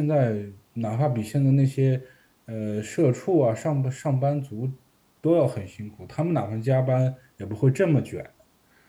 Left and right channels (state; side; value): identical; both; correlation 1.00